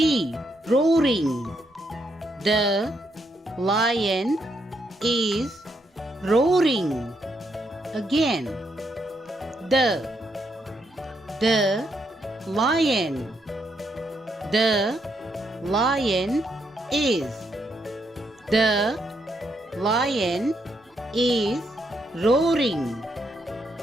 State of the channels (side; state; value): both; normal; correlation 0.77